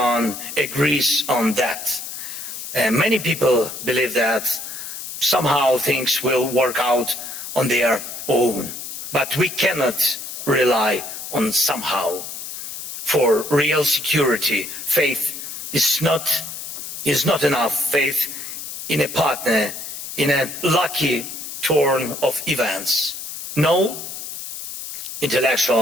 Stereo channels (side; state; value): left; noise; hiss, 8 dB below the sound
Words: agrees on that. And many people believe that somehow things will work out on their own. But we cannot rely on somehow. For real security, faith is not enough. Faith in a partner, in a lucky turn of events. No